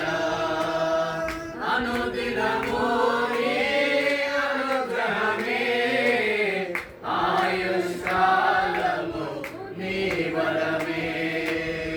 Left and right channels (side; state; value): both; identical; correlation 1.00